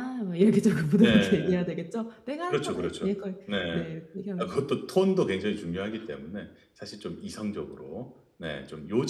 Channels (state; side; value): identical; both; correlation 1.00